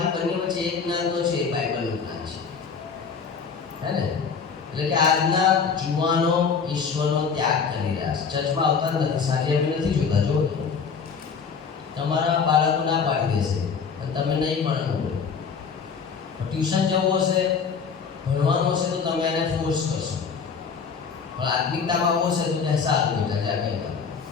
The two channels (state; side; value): quieter; right; 5.9 dB